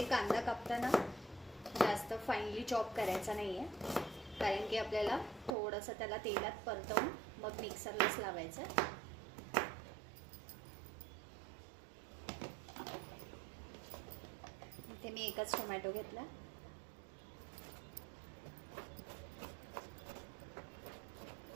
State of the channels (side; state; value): left; drops out; at 5.5 s